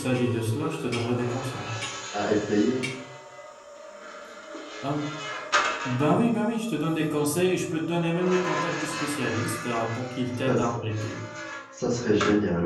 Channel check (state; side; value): identical; both; correlation 1.00